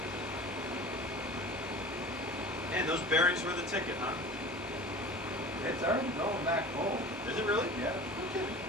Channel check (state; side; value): normal; both; correlation 0.38